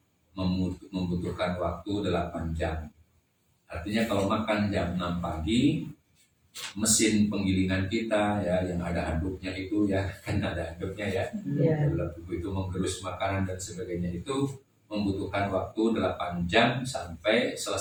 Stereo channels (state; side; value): identical; both; correlation 1.00